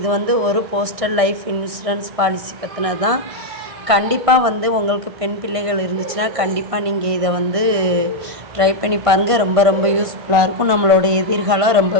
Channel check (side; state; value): left; late; 1.6 ms